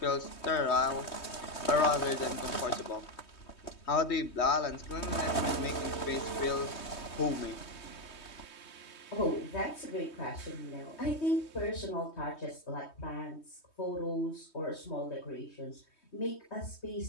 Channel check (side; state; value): right; late; 3.2 ms